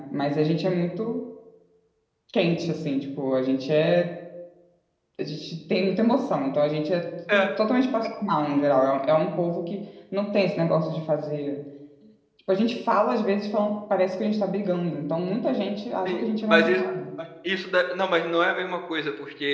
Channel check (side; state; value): both; identical; correlation 1.00